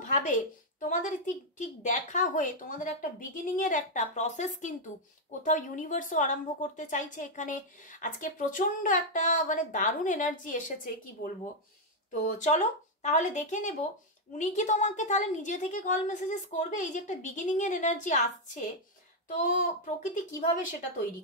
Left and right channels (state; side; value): normal; both; correlation 0.00